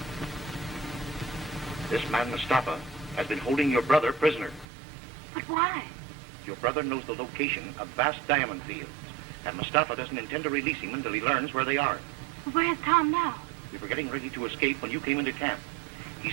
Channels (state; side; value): drops out; left; at 4.7 s